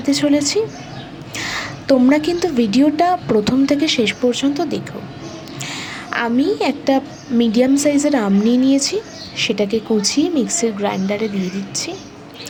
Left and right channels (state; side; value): identical; both; correlation 1.00